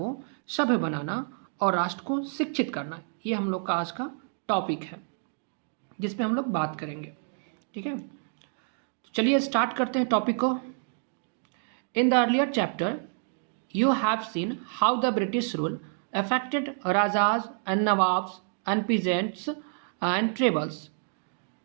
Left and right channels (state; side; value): silent; left; 59 dB below the other